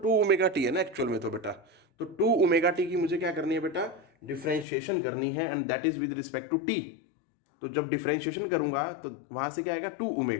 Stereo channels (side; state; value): right; drops out; at 4.7 s